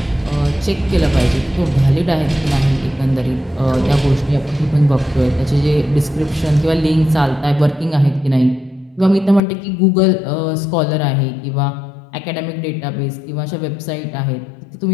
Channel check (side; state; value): right; drops out; at 9.4 s